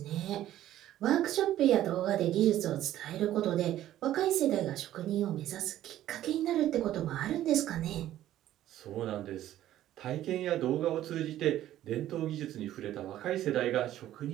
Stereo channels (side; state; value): left; quieter; 13.0 dB